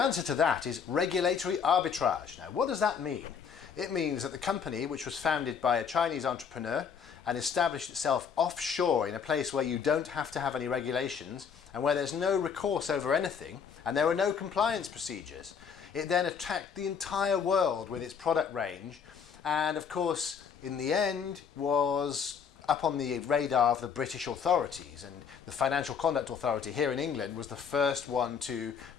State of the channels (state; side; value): quieter; right; 6.7 dB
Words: to that is regulatory arbitrage. Now, what does that mean? It means that the company, which was founded by a Chinese entrepreneur and established itself offshore in a place where you don't have to have any regulations and where there's no recourse over anything and there are no compliance procedures, it then attacked the entire world with its product range, and of course in the end was up on the radar of the British authorities, and the Financial Conduct Authority here in England was the first one to